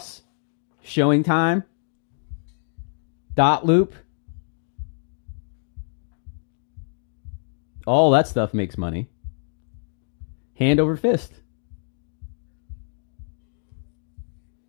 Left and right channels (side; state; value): right; silent; digital silence